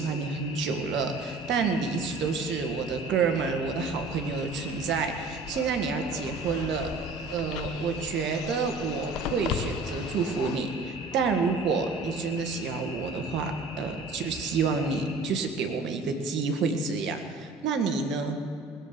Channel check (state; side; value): quieter; left; 3.5 dB